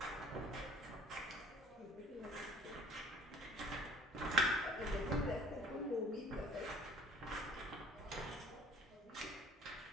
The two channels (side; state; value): both; normal; correlation 0.54